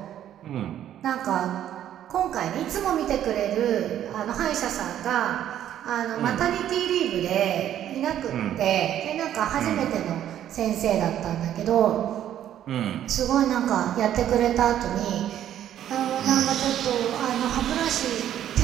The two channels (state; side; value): quieter; left; 11.1 dB